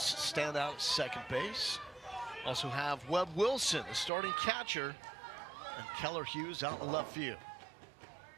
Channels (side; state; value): left; drops out; at 4.1 s